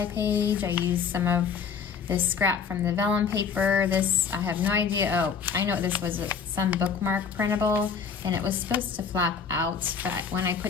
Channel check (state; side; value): quieter; right; 6.2 dB